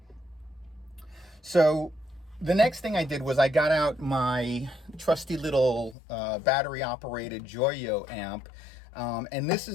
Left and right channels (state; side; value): drops out; right; at 6.0 s